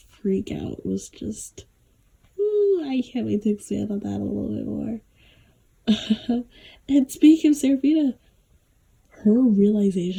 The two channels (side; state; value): both; identical; correlation 1.00